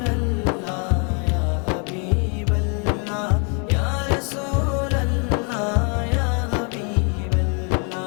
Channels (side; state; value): right; quieter; 36.4 dB